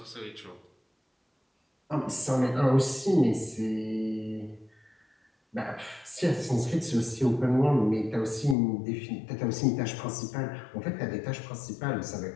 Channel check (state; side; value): drops out; right; at 8.6 s